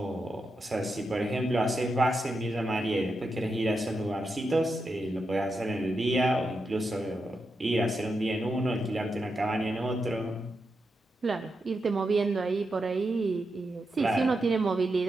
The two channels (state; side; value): normal; both; correlation 0.86